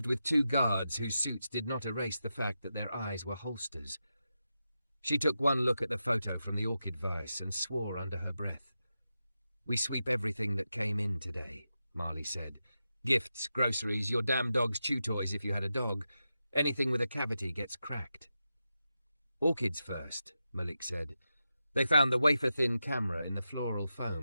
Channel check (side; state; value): both; inverted; correlation -0.89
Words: with 2 guards whose suits did not erase the fact that their eyes were holsters. She took one look at the photo from the orchid vase and swore under her breath. "We sweep everything that came in today," Marley said. "Gifts, groceries, your damn dog's chew toys if you had a dog. Anything with a cavity gets cracked." "Orchids first," Malik said. They found the wafer-thin camera in the floral